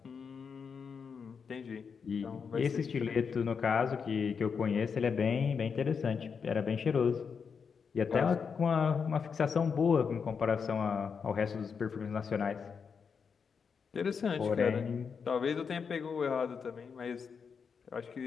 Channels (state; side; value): quieter; right; 6.1 dB